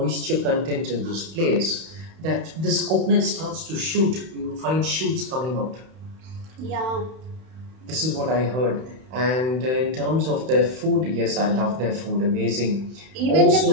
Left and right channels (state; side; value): late; left; 31 ms